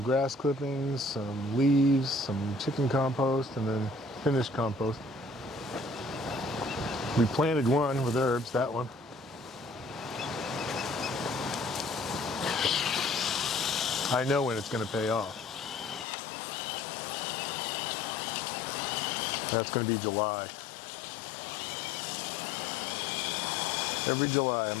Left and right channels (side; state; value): right; drops out; at 16.1 s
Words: grass clippings, some leaves, some chicken compost, and then finished compost. We planted one with herbs, that one. I know when it's going to pay off. That's going to be July. Every July